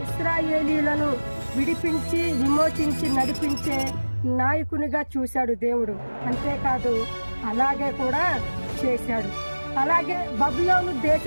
ఇశ్రాయేలీలను విడిపించి విమోచించి నడిపించే నాయకునిగా చూశాడు దేవుడు. అంతేకాదు అలాగే కూడా చేశాడు. అలాగే బబులోను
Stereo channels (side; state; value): both; inverted; correlation -1.00